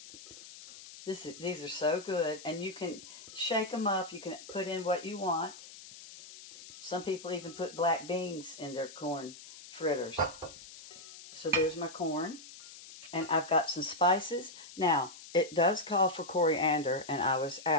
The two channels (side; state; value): left; noise; hiss, 16 dB below the sound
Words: These are so good, and you can shake them up. You can put in what you want. Some people even put black beans in their corn fritters. So there's my corn, and I've got some spices. Now, it does call for coriander, and I was